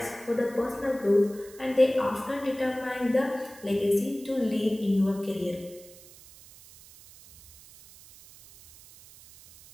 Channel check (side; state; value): right; noise; hiss, 21 dB below the sound